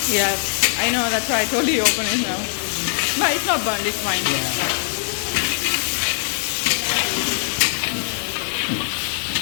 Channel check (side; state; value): right; silent; digital silence